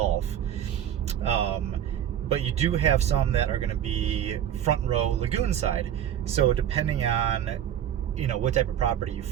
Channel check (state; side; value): quieter; left; 10.4 dB